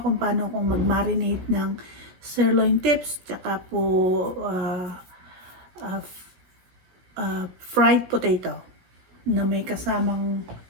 paano kung mag-marinate ng sirloin tips, tsaka po uh, fried potato na may kasamang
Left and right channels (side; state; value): left; late; 16 ms